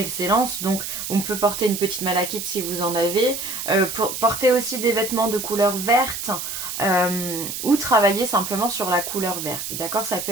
Donc, on peut porter une petite malachite si vous en avez. Porter aussi des vêtements de couleur verte. Ou travailler simplement sur la couleur verte, d'accord, ça peut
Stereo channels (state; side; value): noise; right; hiss, 6 dB below the sound